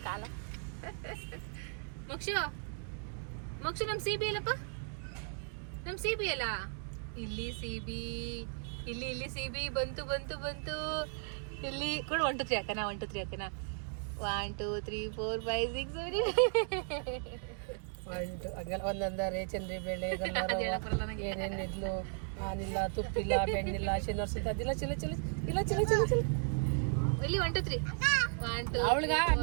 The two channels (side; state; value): left; silent; 54 dB below the other